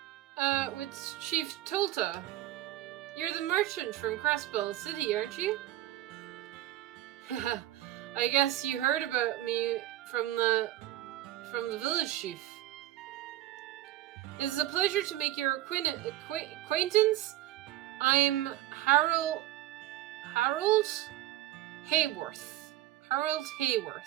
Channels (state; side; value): quieter; left; 14.8 dB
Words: with Chief Tolta. You're the merchant from Crossbell City, aren't you? I guess you heard about me from the village chief. It is a pleasure to make your acquaintance. I'm Harold Hayworth. Harold